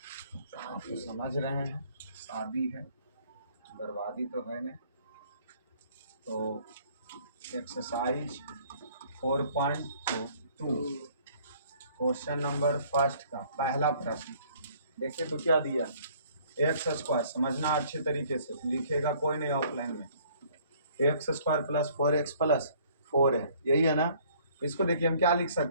आप तो समझ रहे हैं, शादी है, बर्बादी तो है नहीं। तो एक्सरसाइज 4.2 क्वेश्चन नंबर फर्स्ट का पहला प्रश्न देखिए तो क्या दिया, एक्स स्क्वायर, समझना अच्छे तरीके से, लिखेगा कोई नहीं ऑफलाइन में। X square plus 4x plus 4 है, यही है ना। इसको देखिए हम क्या लिख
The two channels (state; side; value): inverted; both; correlation -0.58